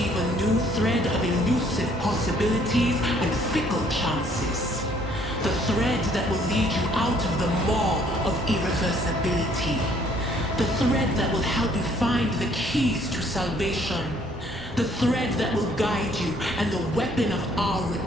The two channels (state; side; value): normal; both; correlation 0.63